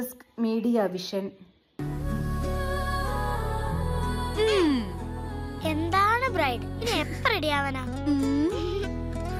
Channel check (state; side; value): identical; both; correlation 1.00